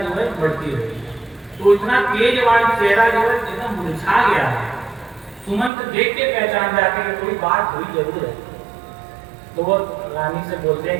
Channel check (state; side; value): drops out; left; at 5.7 s